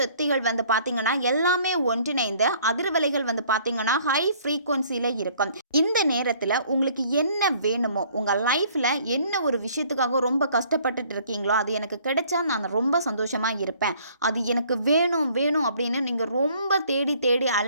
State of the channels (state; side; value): inverted; both; correlation -0.58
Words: வந்து பார்த்தீங்கன்னா எல்லாமே ஒன்றிணைந்து அதிர்வலைகள் வந்து பார்த்தீங்கன்னா ஹை ஃப்ரீக்வன்சியில் இருக்கும். இந்த நேரத்தில் உங்களுக்கு என்ன வேணுமோ, உங்கள் லைஃப்பில் என்ன ஒரு விஷயத்துக்காக ரொம்ப கஷ்டப்பட்டுட்டு இருக்கீங்களோ, அது எனக்கு கிடைச்சா நான் ரொம்ப சந்தோஷமாக இருப்பேன், அது எனக்கு வேணும் அப்படின்னு நீங்கள் ரொம்ப தேடி